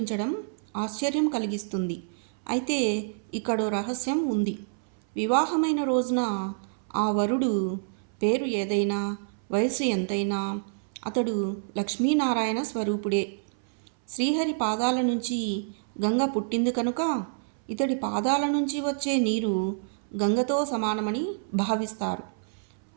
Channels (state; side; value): silent; left; 60 dB below the other